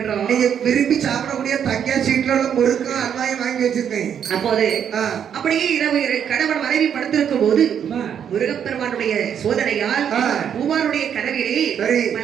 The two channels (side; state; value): left; quieter; 8.5 dB